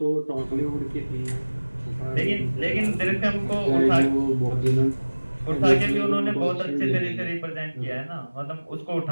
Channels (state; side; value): inverted; both; correlation -1.00